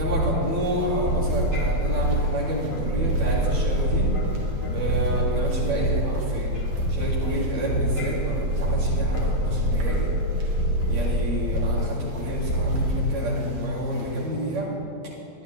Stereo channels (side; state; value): left; late; 12 ms